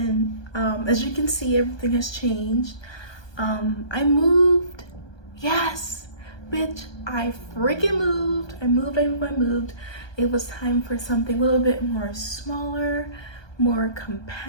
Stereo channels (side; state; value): right; late; 1.2 ms